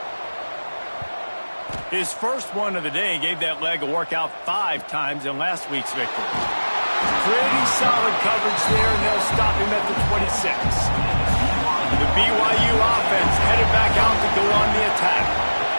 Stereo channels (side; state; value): both; inverted; correlation -1.00